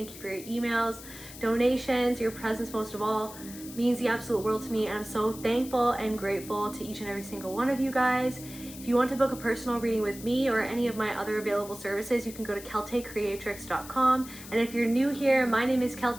you for your emails, donations, your presence most of all means the absolute world to me, and I'm so thankful and grateful to each and every single one of you guys. If you want to book a personal reading with me or any of my other available services, you can go to keltecreatrix.com. And if you're new here, my name is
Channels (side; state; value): left; noise; hiss, 15 dB below the sound